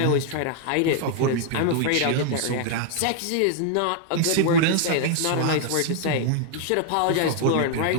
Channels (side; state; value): both; different; correlation 0.00